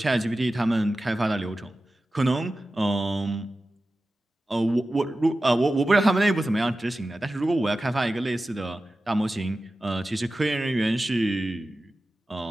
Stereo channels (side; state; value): both; normal; correlation 0.94